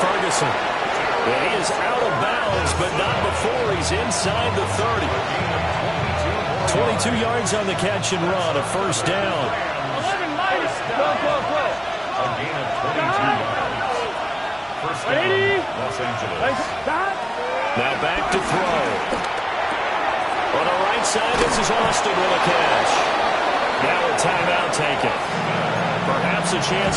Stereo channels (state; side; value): identical; both; correlation 1.00